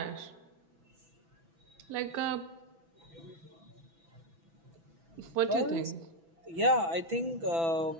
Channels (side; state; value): left; late; 6.0 ms